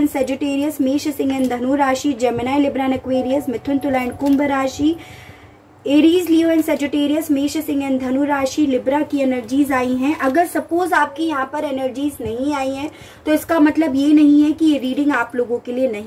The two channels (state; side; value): identical; both; correlation 1.00